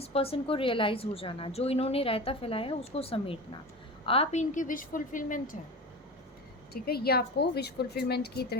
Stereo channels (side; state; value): both; normal; correlation 0.29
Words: पर्सन को रियलाइज़ हो जाना, जो इन्होंने रायता फैलाया है उसको समेटना। आप इनकी विश फुलफिलमेंट है। ठीक है, ये आपको विश फुलफिलमेंट की